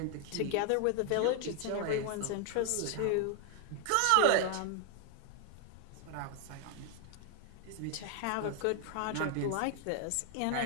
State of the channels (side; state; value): both; different; correlation 0.00